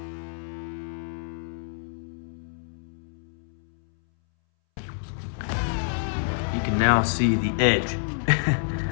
You can now see the edge.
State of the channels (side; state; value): right; silent; 60 dB below the other